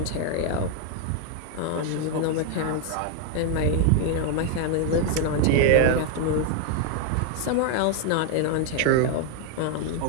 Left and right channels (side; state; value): both; different; correlation 0.00